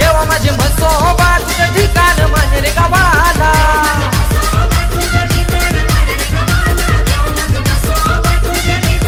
माझे म्हसोबा तुझं ठिकाण माने रे गावाला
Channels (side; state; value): both; identical; correlation 1.00